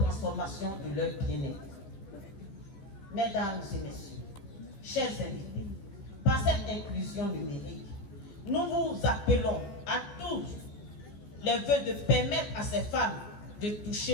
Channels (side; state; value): right; late; 14 ms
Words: de leur bien-être. Mesdames et messieurs, chers invités, par cette inclusion numérique, nous vous appelons à tous les vœux de permettre à ces femmes de